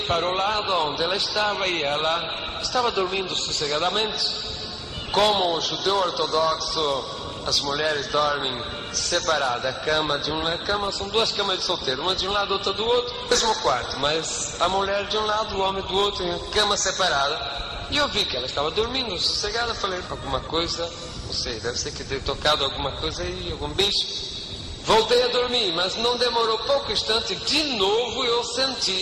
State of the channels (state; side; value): identical; both; correlation 1.00